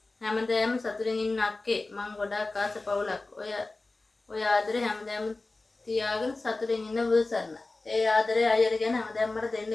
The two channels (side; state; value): right; quieter; 3.3 dB